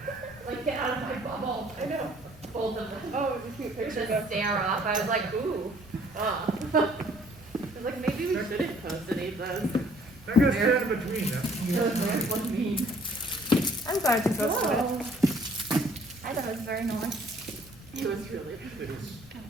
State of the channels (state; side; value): noise; left; rumble, 23 dB below the sound